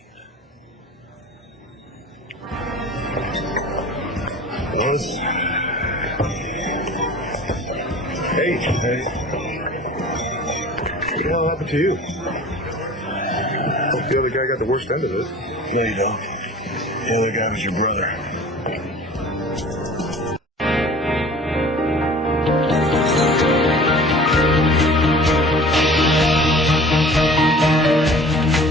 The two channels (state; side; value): normal; both; correlation 0.44